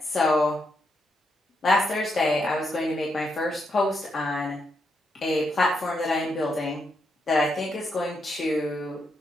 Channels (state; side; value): normal; both; correlation 0.80